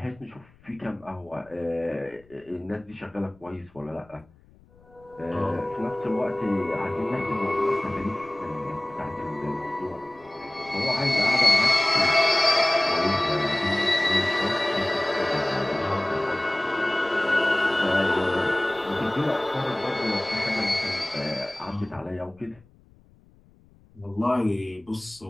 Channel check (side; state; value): left; noise; rumble, 28 dB below the sound